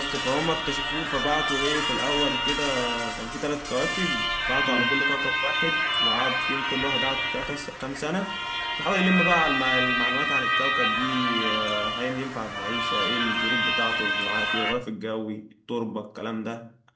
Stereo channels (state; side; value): identical; both; correlation 1.00